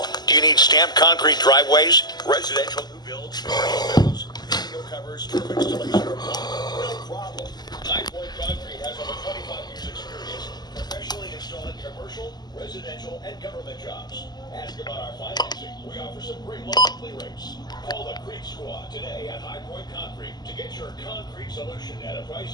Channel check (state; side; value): late; right; 0.20 ms